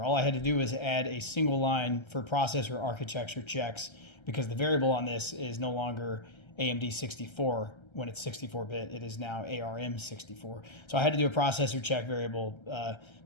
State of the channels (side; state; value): right; late; 1.3 ms